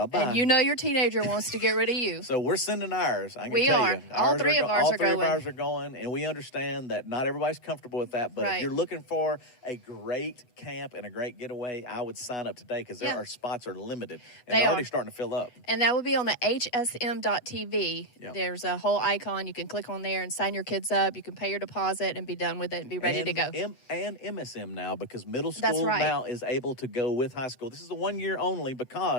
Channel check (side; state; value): right; late; 8.2 ms